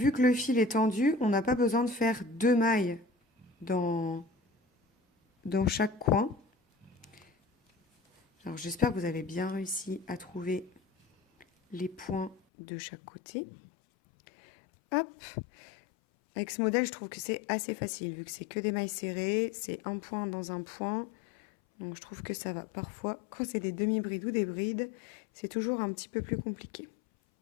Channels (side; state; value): right; drops out; at 12.4 s